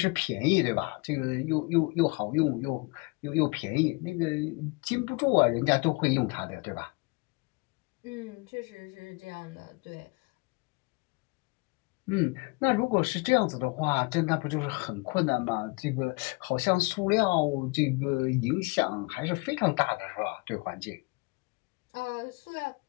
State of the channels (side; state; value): right; quieter; 28.1 dB